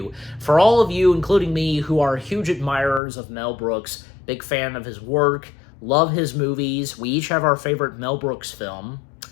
For all of you, including me, who are huge admirers of Mel Brooks, big fan of his work, love his movies, we each have our favorite Mel Brooks film,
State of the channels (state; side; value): drops out; right; at 3.0 s